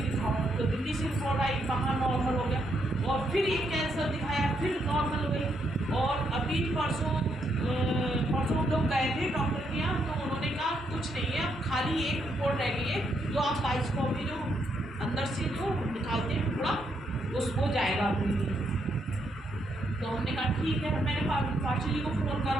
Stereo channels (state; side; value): normal; both; correlation 0.77